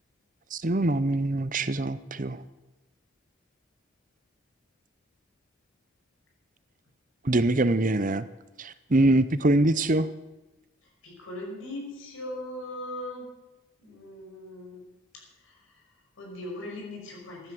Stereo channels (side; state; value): both; normal; correlation 0.65